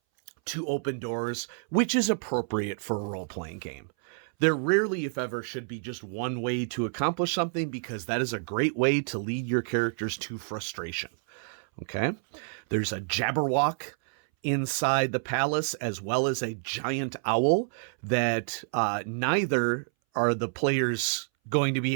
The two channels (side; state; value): left; silent; 59 dB below the other